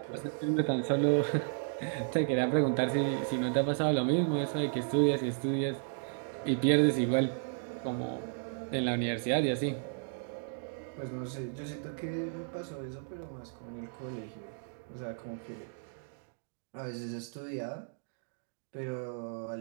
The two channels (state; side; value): silent; left; digital silence